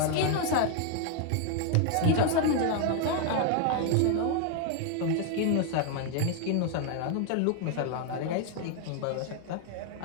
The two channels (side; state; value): both; different; correlation 0.00